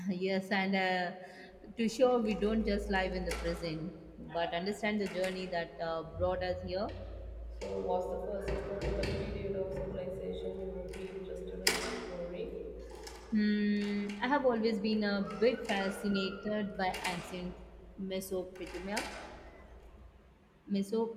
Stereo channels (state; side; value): identical; both; correlation 1.00